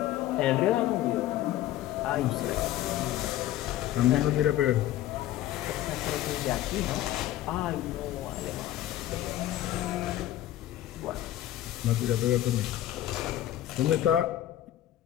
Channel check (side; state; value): right; quieter; 13.5 dB